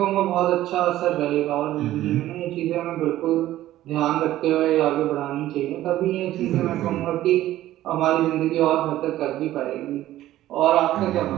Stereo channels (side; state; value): left; quieter; 14.3 dB